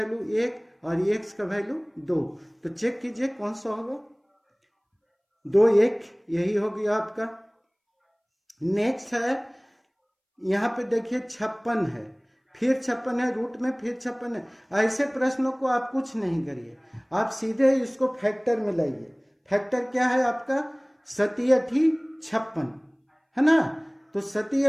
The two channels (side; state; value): both; identical; correlation 1.00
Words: 1 और x का वैल्यू 2। तो चेक कीजिए कौन सा होगा, 2 1, यही हो गया आपका। नेक्स्ट है यहाँ पे देखिए 56 है, फिर 56 है, रूट में फिर 56 है। ऐसे प्रश्नों को आप कुछ नहीं करिए, आप सीधे इसको फैक्टर में लाइए। फैक्टर क्या है आपका, 7 56 है ना। तो 7